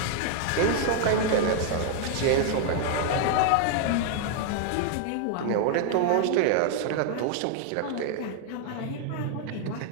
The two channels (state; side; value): different; both; correlation 0.00